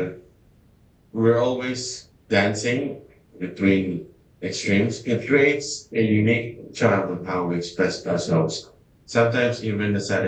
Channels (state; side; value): identical; both; correlation 1.00